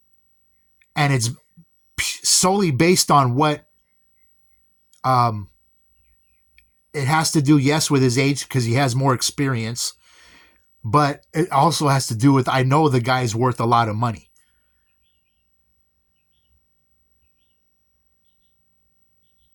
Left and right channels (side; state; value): both; identical; correlation 1.00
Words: And it's solely based on what it has to do, yes, with his age, because he has more experience. But it also has to do with, I know the guy's worth a lot of money.